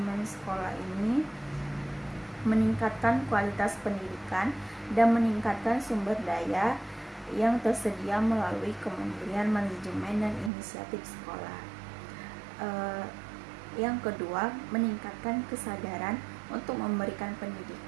sekolah ini meningkatkan kualitas pendidikan dan meningkatkan sumber daya yang tersedia melalui Kementerian Manajemen dan Inisiatif Sekolah. Yang kedua, meningkatkan kesadaran untuk memberikan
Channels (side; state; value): left; drops out; at 10.5 s